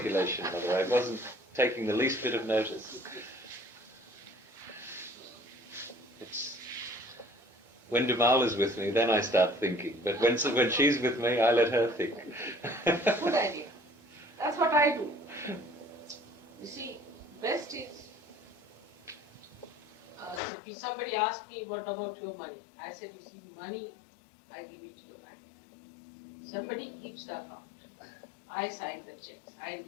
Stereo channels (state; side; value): drops out; right; at 20.4 s